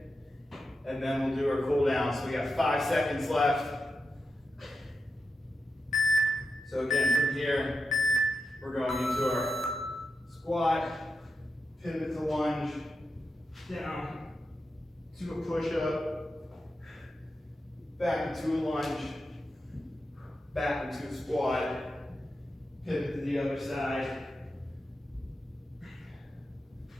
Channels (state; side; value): normal; both; correlation 0.89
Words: And then we'll do our cool down. So we got 5 seconds left. So again, from here, we're going into our squat, pivot to lunge, down to a push-up, back into a lunge, back into a squat, pivot to the other side.